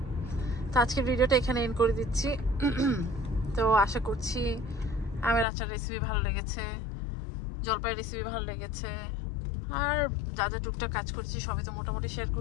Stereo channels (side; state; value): right; drops out; at 5.5 s